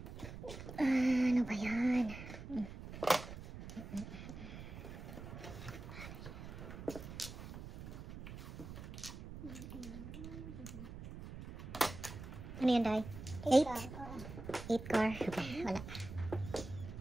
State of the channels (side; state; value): right; noise; rumble, 10 dB below the sound